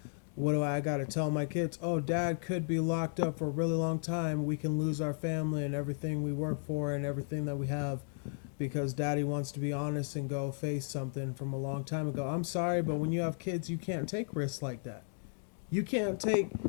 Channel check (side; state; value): right; silent; digital silence